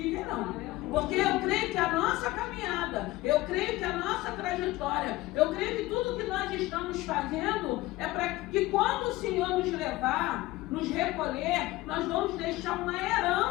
Porque eu creio que a nossa caminhada, eu creio que a nossa trajetória, eu creio que tudo que nós estamos fazendo é para que quando o Senhor nos levar, nos recolher, nós vamos deixar uma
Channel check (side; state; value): right; quieter; 18.6 dB